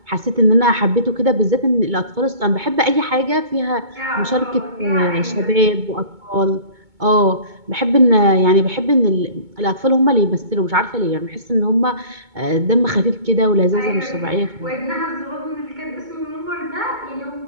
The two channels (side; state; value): left; late; 2.2 ms